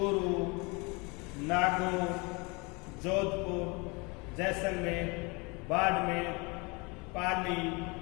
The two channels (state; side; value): quieter; right; 28.3 dB